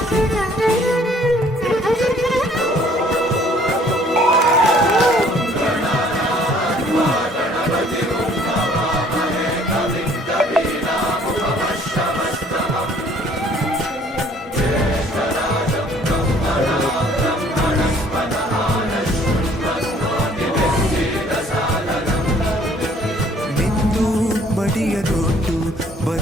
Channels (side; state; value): both; normal; correlation 0.58